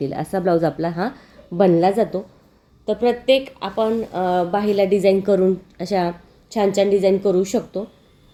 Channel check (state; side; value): identical; both; correlation 1.00